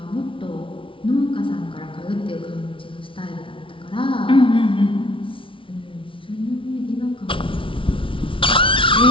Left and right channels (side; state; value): right; late; 0.25 ms